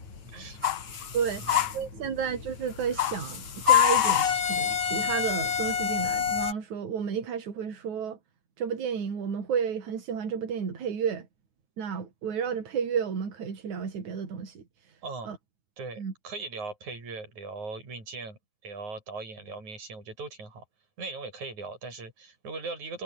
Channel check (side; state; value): left; late; 9.3 ms